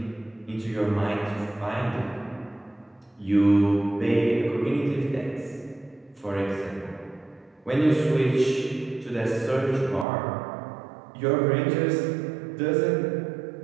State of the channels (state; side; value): drops out; left; at 10.1 s